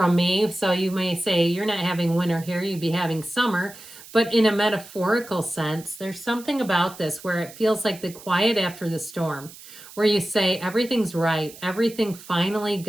me. So you may say you're not having winter here, you'd be having summer. But in a metaphorical sense, there's something about this where it feels like the quiet after the storm, where you say everything's right. Everything finally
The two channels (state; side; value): noise; right; hiss, 18 dB below the sound